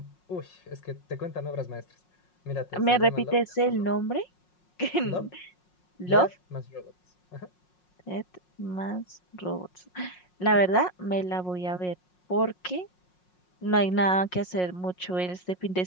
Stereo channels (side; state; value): right; late; 5.5 ms